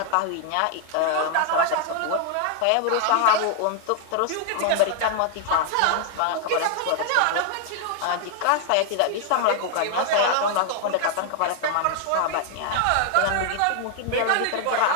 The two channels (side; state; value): both; different; correlation 0.00